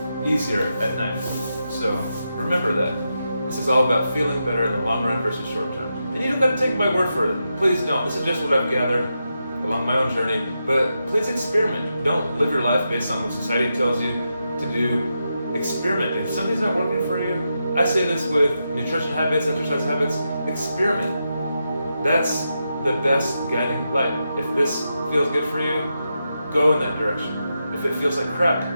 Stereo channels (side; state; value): both; inverted; correlation -0.86